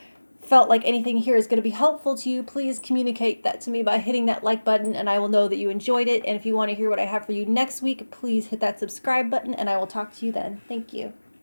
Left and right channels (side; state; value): both; inverted; correlation -1.00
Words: felt like anything here is going to be helpful to you, please communicate that to me by hitting that like button and I will know that you enjoyed it. And if you want to hear what I have for you next week, please hit that subscribe button and I will talk to you then. Thank you.